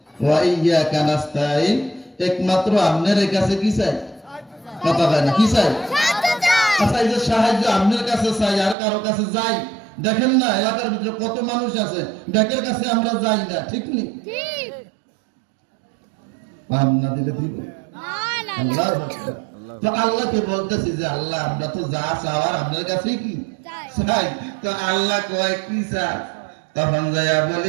ওয়া ইয়াকা নাস্তাইন, একমাত্র আপনার কাছে কি চাই? কথা বলে না, কি চাই? আচ্ছা, এই যে সাহায্য আপনার কাছে চাই, আর কারো কাছে যাই? দেখেন না এলাকার ভিতরে কত মানুষ আছে, ব্যাকের কাছে আমরা যাই না। ঠিক নেই? পাম না দিলে দিব। আল্লাহু আকবার। তো আল্লাহকে বলতেছি যে আল্লাহ আমরা তো যা চাওয়ার আপনার কাছে কি চাই, তো আল্লাহ কয় কি চাই, তখন যাইয়া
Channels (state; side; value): drops out; left; at 8.8 s